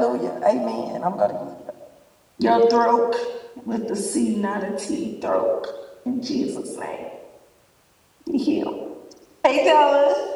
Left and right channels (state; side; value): identical; both; correlation 1.00